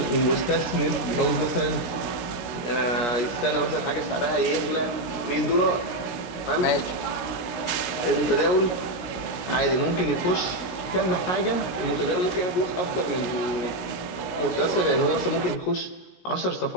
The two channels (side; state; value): right; late; 17 ms